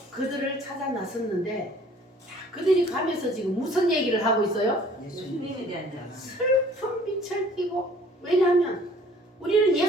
그들을 찾아 나섰는데 그들이 가면서 지금 무슨 얘기를 하고 있어요? 예수님에 대한 자. 슬픈 빛을 띠고, 왜냐하면 우리는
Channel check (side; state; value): both; normal; correlation 0.54